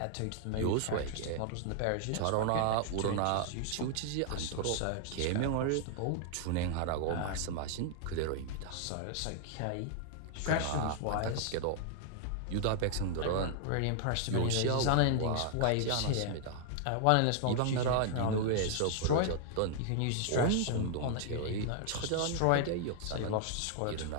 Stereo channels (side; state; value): both; different; correlation 0.00